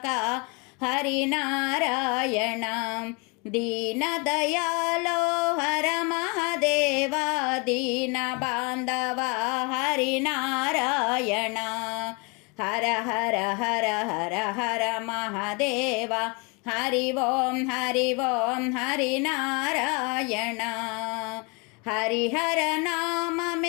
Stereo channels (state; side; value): quieter; right; 31.2 dB